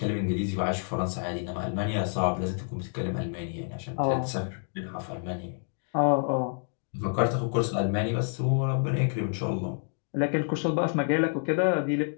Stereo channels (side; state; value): right; silent; 56 dB below the other